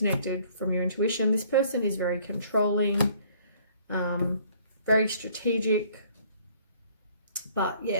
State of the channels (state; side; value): inverted; both; correlation -0.58